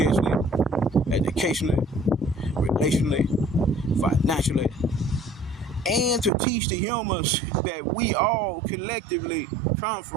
educationally, relationally, financially, and to teach the humans that we all collectively come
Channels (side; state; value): left; drops out; at 6.3 s